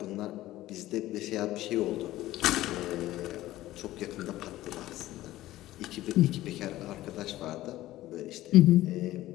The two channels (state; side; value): quieter; right; 15.6 dB